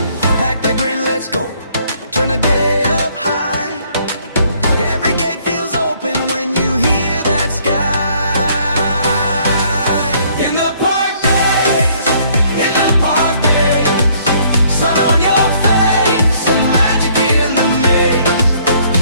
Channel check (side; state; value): both; inverted; correlation -0.63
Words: Pack that grin, let's go, turn the day up high. Every gate feels open when you hear that sky. In the park days, in the park days, sun on your face and magic in the maze.